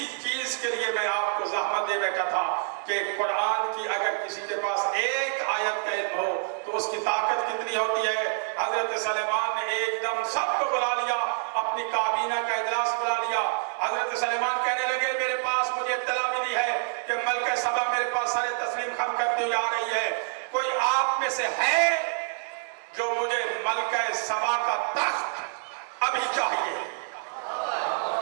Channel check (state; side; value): silent; left; 60 dB below the other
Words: چیز کے لیے میں آپ کو زحمت دے بیٹھا تھا کہ قرآن کی اگر کسی کے پاس ایک آیت کا علم ہو تو اس کی طاقت کتنی ہوتی ہے. حضرت سلیمان نے ایک دم سب کو بلا لیا، اپنی کابینہ کا اجلاس بلا لیا. حضرت سلیمان کہنے لگے میرے پاس مجھے اطلاع ملی ہے کہ ملکہ سبا میرے پاس سارے تسلیم خم کرتی ہوئی آ رہی ہے. کوئی آپ میں سے ہے جو مجھے ملکہ سبا کا تخت ابھی چاہیے؟